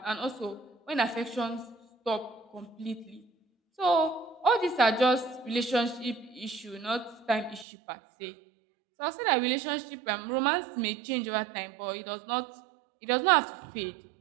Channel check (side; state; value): left; drops out; at 7.7 s